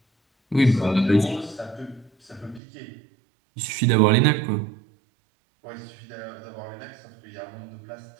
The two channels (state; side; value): drops out; left; at 2.6 s